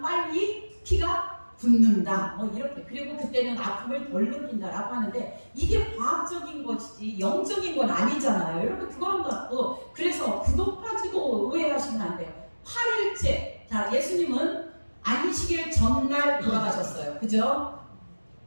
피가 붙는다. 뭐 이렇게. 그리고 그때는 아픔을 덜 느낀다라고 하는데 이게 과학적인 것이지 영적인 건 아니잖아요. 여러분 그거는 갖고 그래서 그것 가지고 오해하시면 안 돼요. 8일째. 자, 예수님은 안식일 전날 돌아가셨어요. 그죠?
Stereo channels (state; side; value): inverted; both; correlation -1.00